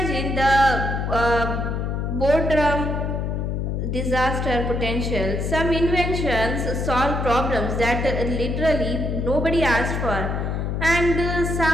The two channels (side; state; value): left; noise; hum, 1 dB below the sound